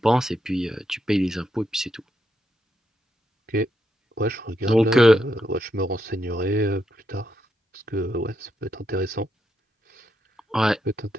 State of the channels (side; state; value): both; normal; correlation 0.81